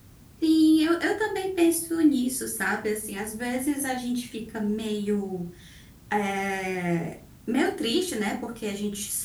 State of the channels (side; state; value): both; identical; correlation 1.00